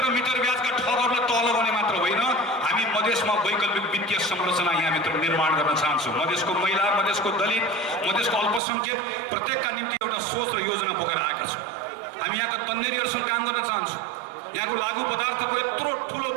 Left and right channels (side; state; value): left; drops out; at 8.6 s